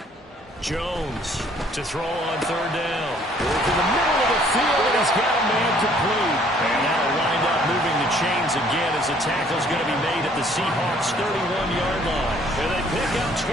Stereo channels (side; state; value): both; normal; correlation 0.60